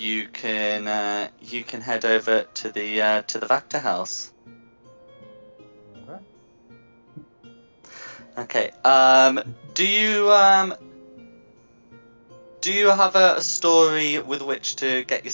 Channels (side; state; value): both; inverted; correlation -1.00